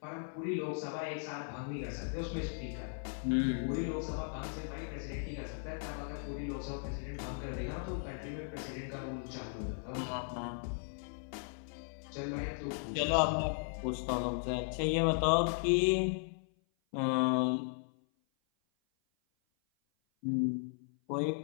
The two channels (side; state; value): right; silent; 53 dB below the other